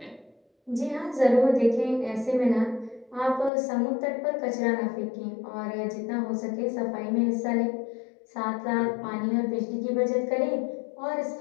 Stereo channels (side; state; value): right; drops out; at 3.5 s